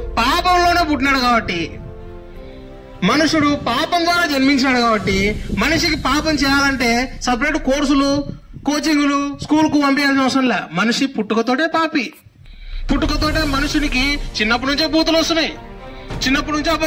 పాపంలోనే పుట్టినాడు కాబట్టి, మనుషుడు పాపం ద్వారా జన్మించినాడు కాబట్టి, మనిషికి పాపం చేయాలంటే సపరేట్ కోర్సులు, కోచింగులు, స్కూల్కు పంపించాల్సిన అవసరం లే. మనిషి పుట్టుకతోటే పాపి. పుట్టుకతోటే మనుషునికి చిన్నప్పటి నుంచే బూతులు వస్తున్నాయి, చిన్నప్పటి నుంచే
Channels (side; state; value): both; identical; correlation 1.00